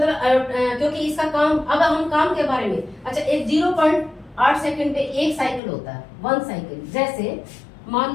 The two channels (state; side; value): drops out; right; at 5.6 s